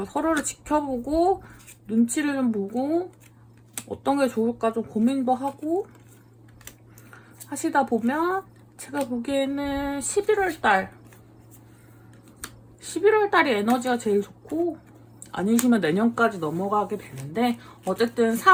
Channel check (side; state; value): both; identical; correlation 1.00